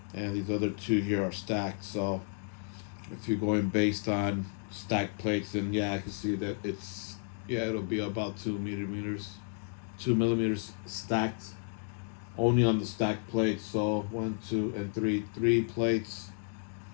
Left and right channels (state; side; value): silent; right; 56 dB below the other